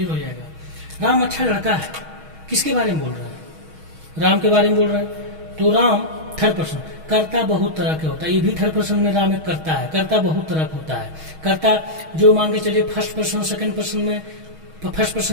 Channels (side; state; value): left; late; 6.3 ms